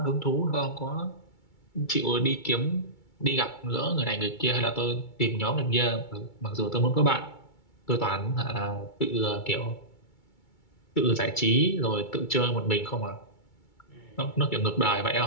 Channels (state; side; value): late; right; 2.3 ms